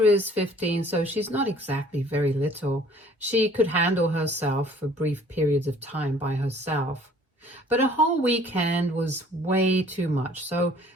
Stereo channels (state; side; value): normal; both; correlation 0.55